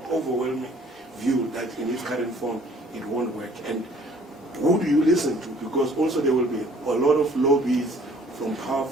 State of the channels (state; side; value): normal; both; correlation 0.56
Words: overwhelming view that in its current form it won't work? And who do you listen to? Because also there will be a lot of lobbies from